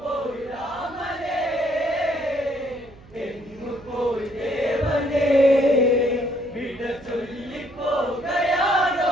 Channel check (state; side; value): noise; right; hum, 23 dB below the sound